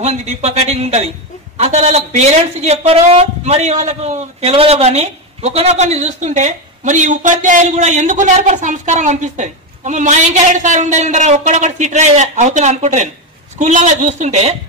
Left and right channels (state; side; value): normal; both; correlation 0.11